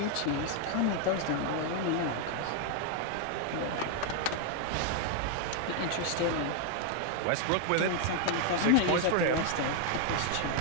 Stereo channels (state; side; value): different; both; correlation 0.00